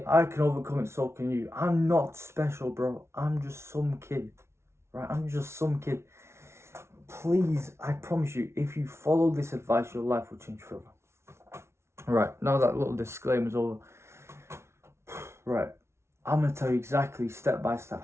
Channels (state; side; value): late; left; 0.13 ms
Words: I can overcome it, so can you. I'm not special, bro. I'm just some kid, right? I'm just some kid. Please, I promise you, if you follow this advice, your life will change forever. Right, now that little disclaimer's over. Right, I'm going to tell you exactly, step by step,